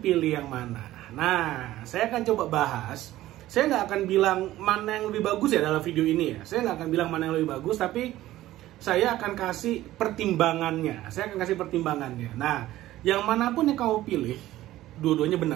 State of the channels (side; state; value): left; quieter; 15.2 dB